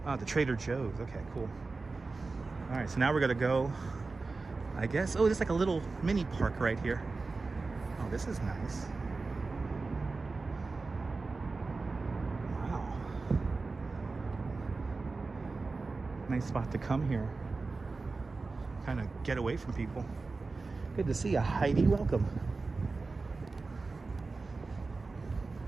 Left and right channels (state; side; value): quieter; left; 3.9 dB